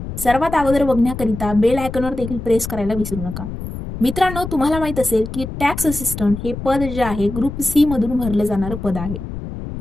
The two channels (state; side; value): noise; left; rumble, 8 dB below the sound